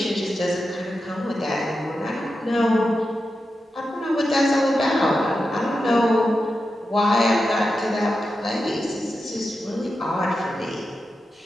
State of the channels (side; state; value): both; normal; correlation 0.90